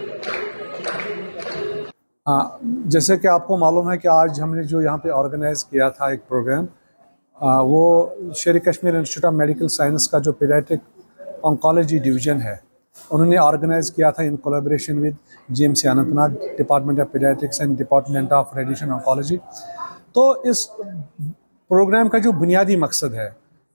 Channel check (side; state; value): both; inverted; correlation -1.00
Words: जैसे कि आपको मालूम है कि आज हमने जो यहाँ पे ऑर्गेनाइज किया था एक प्रोग्राम, वो शेर Kashmir institute of medical science का जो पीडियाट्रिक ऑन्कोलॉजी डिवीज़न है, उन्होंने ऑर्गेनाइज किया था in collaboration with GMC Anantnag, department of paediatrics and department of radiation oncology. तो इस प्रोग्राम का जो बुनियादी मकसद है